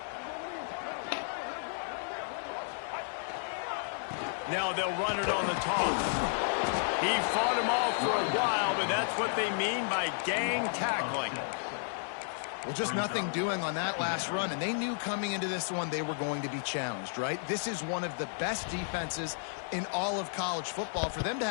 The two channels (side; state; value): right; silent; digital silence